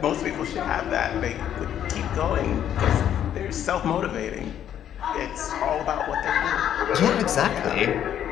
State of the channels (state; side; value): quieter; right; 10.2 dB